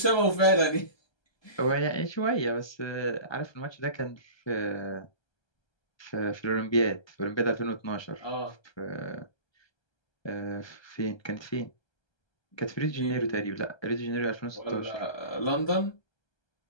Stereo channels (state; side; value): late; right; 1.3 ms